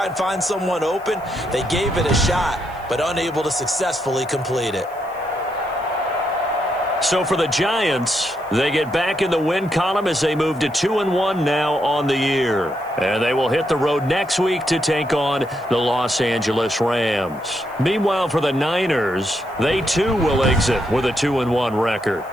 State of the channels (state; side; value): noise; right; hiss, 27 dB below the sound